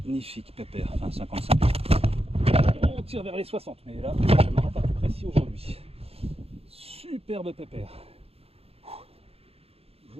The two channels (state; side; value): late; left; 0.29 ms